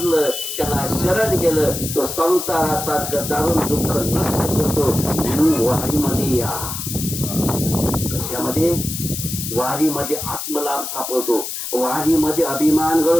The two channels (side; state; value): left; noise; hiss, 6 dB below the sound